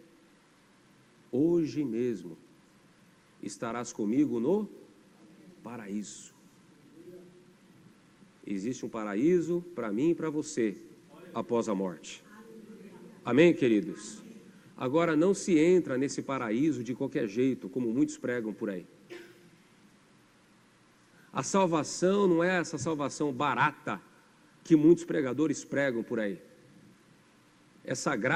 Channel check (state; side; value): identical; both; correlation 1.00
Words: Hoje mesmo estarás comigo no paraíso. Existe um paraíso para mim e para você após a morte. Amém, queridos? Agora, não se entra nesse paraíso de qualquer jeito, como muitos pregam por aí. A salvação não é essa salvação barata que muitos pregadores pregam por aí. Essa